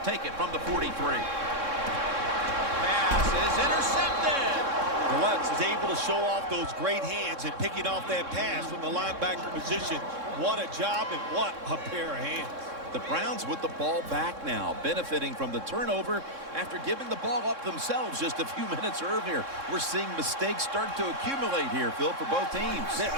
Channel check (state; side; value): late; left; 3.6 ms